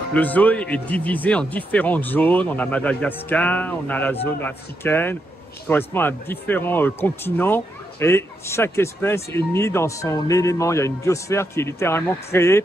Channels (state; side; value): normal; both; correlation 0.82